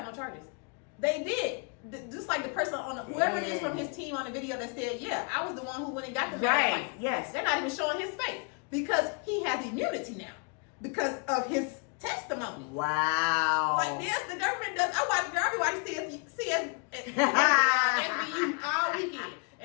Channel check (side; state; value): right; quieter; 36.6 dB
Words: no charges? They did. Just like the person whoever it is from his team on the video that said, yeah, I was the one who went and got the right. Yes. They're not even showing his face because he has immunity now because of his testimony. Wow. Like this, the government does. I watch CS SVU all weekend,